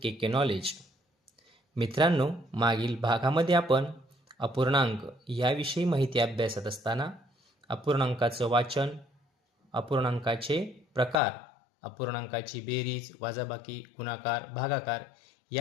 K knowledge. मित्रांनो, मागील भागामध्ये आपण अपूर्णांक याविषयी माहिती अभ्यासत असताना अपूर्णांकाचं वाचन, अपूर्णांकाचे प्रकार, अपूर्णांकाची बेरीज, वजाबाकी, गुणाकार, भागाकार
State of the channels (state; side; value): drops out; right; at 11.2 s